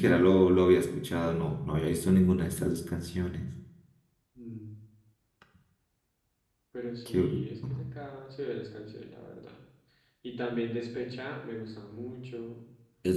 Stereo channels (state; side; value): identical; both; correlation 1.00